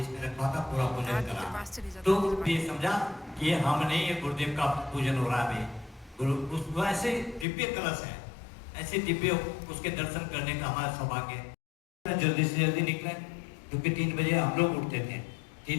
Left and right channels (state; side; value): drops out; right; at 7.5 s